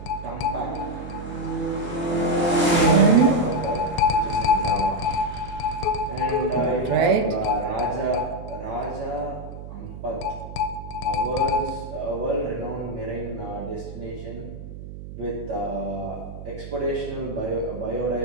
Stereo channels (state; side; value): noise; right; hum, 11 dB below the sound